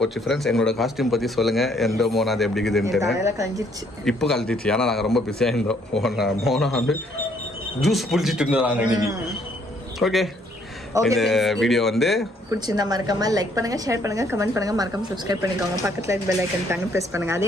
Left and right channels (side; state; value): both; normal; correlation 0.66